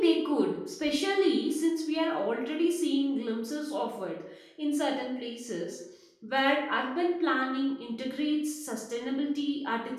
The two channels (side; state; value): both; identical; correlation 1.00